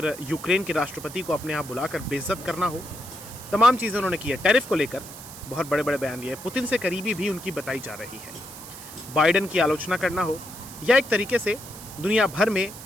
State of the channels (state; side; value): noise; right; hiss, 14 dB below the sound